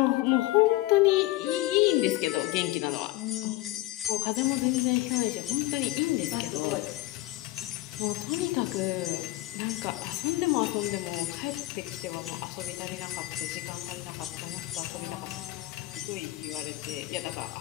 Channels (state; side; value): quieter; right; 18.2 dB